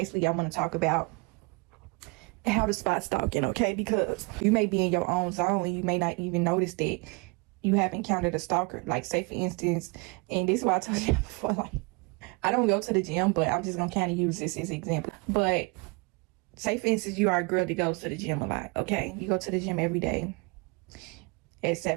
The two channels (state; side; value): quieter; left; 29.5 dB